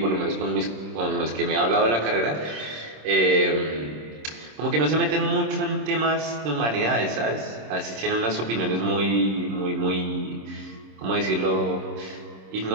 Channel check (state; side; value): late; left; 26 ms